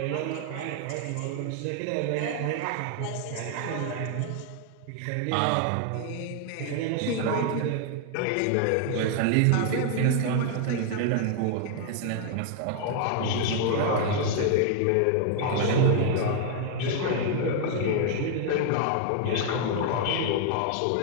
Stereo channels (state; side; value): different; both; correlation 0.00